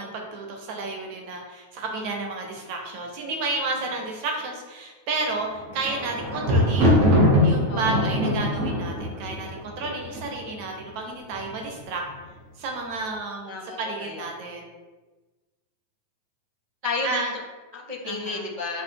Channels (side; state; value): left; late; 9.2 ms